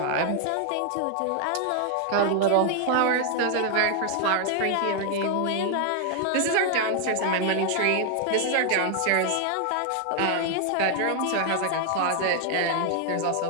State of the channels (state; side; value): different; both; correlation 0.00